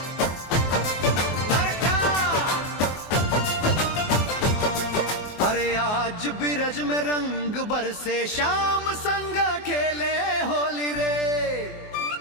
अरे आज बिरज में रंग बरसे, शाम संग खेले होली रे।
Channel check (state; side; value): late; right; 24 ms